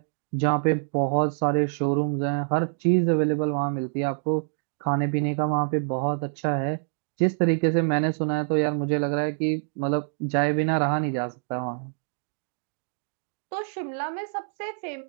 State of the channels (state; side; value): silent; left; digital silence